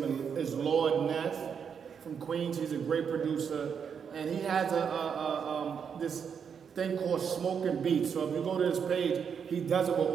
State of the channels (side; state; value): left; quieter; 7.0 dB